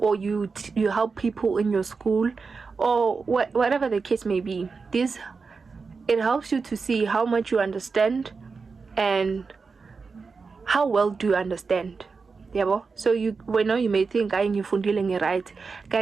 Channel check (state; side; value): quieter; left; 4.7 dB